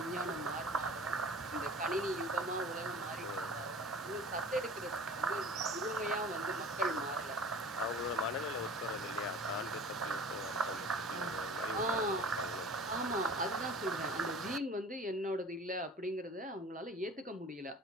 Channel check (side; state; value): both; normal; correlation 0.42